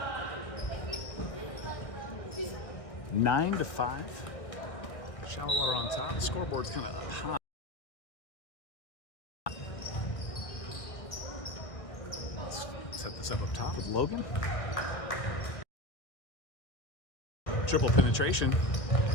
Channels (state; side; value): late; right; 1.5 ms